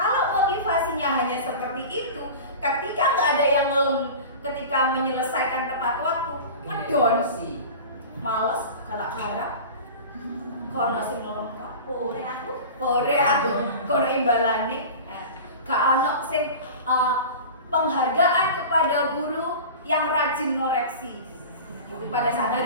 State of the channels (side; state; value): both; inverted; correlation -0.34